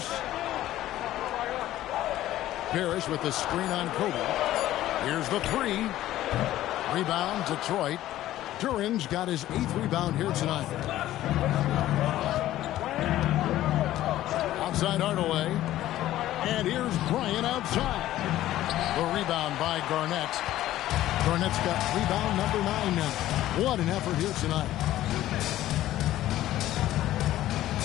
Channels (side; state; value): right; quieter; 14.1 dB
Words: Parrish with the screen on Kobe. Here's the 3. Rebound, Detroit. Duren's got his 8th rebound here tonight. Outside Hardaway. And here's Bryant outside. The rebound by Garnett. Garnett's got rebound number 9 now. What an effort here tonight.